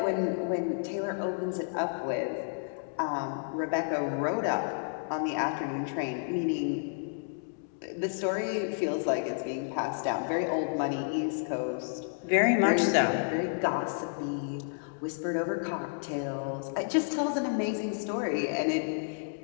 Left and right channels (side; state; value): right; silent; digital silence